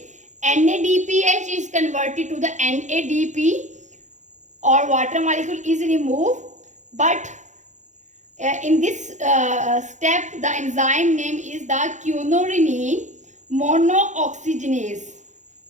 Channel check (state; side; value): late; left; 0.35 ms